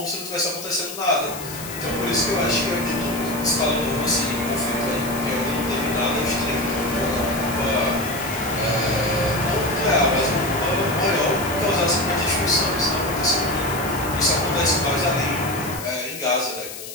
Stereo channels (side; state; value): left; noise; hiss, 11 dB below the sound